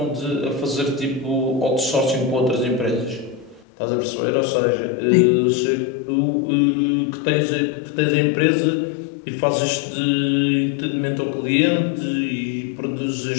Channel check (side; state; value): right; drops out; at 3.7 s